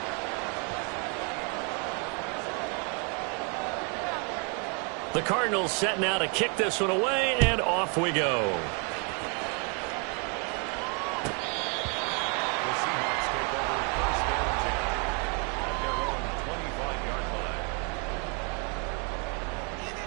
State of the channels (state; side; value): quieter; left; 36.8 dB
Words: The Cardinals set now to kick this one away, and off we go.